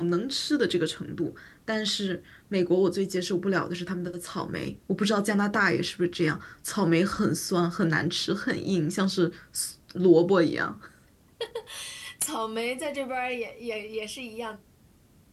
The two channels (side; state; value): both; identical; correlation 1.00